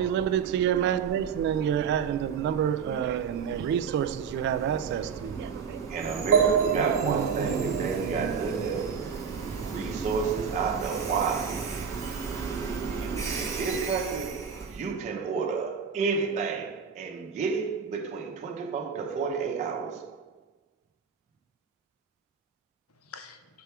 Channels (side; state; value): left; quieter; 6.5 dB